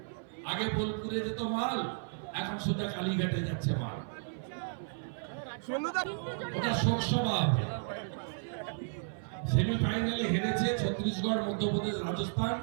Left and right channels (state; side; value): silent; left; 56 dB below the other